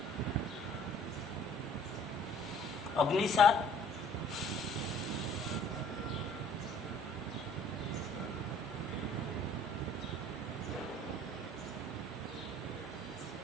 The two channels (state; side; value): normal; both; correlation 0.54